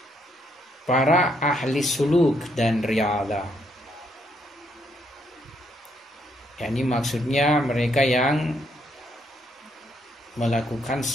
para ahli suluk dan riyadhah. Yani maksudnya mereka yang melakukan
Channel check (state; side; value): normal; both; correlation 0.74